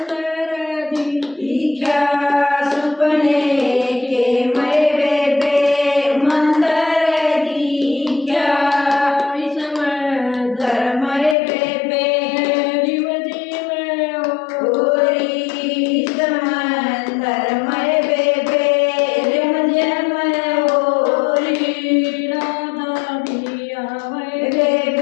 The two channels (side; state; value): right; drops out; at 11.4 s